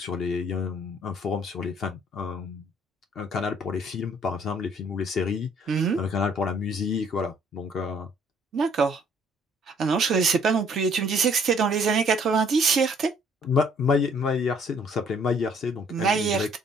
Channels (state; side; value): normal; both; correlation 0.61